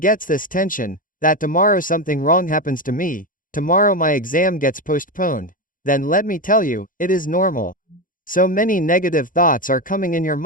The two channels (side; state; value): right; late; 0.39 ms